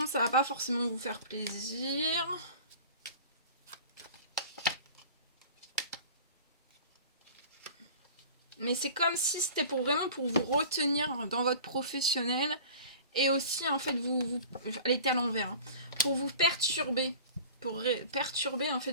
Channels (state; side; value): inverted; both; correlation -0.41